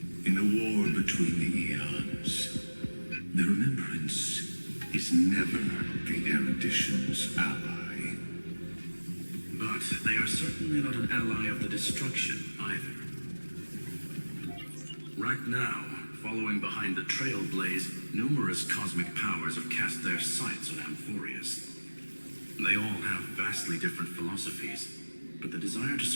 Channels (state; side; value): inverted; both; correlation -1.00